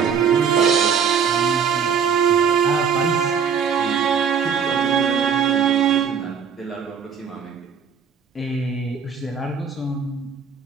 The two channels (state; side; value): quieter; left; 6.7 dB